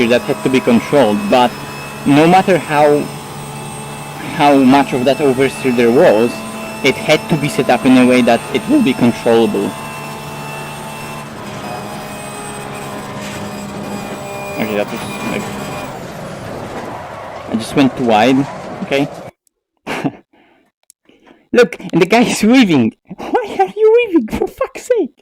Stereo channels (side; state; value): both; identical; correlation 1.00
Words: that had to be controlled, but no matter how much of that oversteer there was, it had to be set up in a way that it will be controllable. Okay, that was like... I just went too wide, okay? Look, and the guy is weaving! Why are you weaving, for fuck's sake?